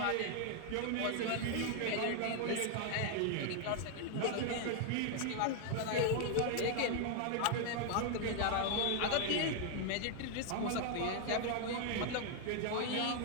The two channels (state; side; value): different; both; correlation 0.00